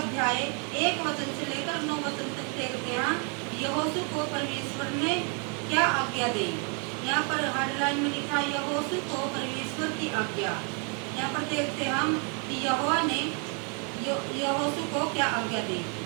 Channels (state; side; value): quieter; left; 37.8 dB